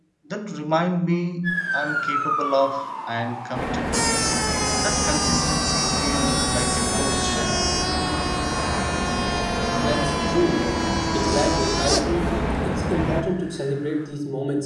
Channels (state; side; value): identical; both; correlation 1.00